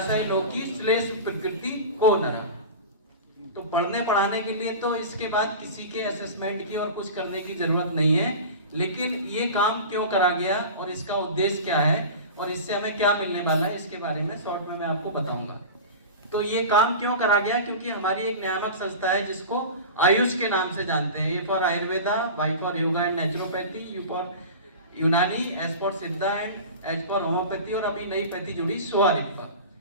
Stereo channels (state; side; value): inverted; both; correlation -0.32